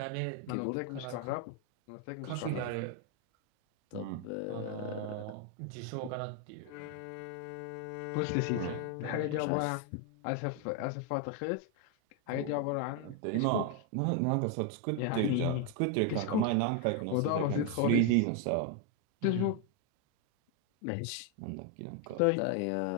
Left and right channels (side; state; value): both; different; correlation 0.01